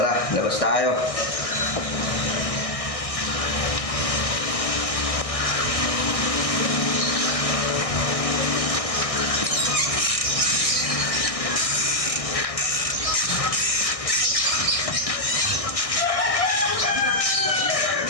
Tara, labas tayo.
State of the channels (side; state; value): right; late; 1.6 ms